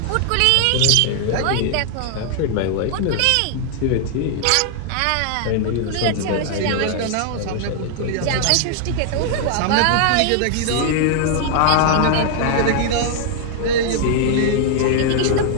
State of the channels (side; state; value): both; different; correlation 0.00